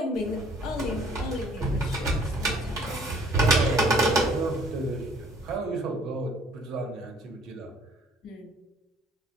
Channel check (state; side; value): normal; both; correlation 0.57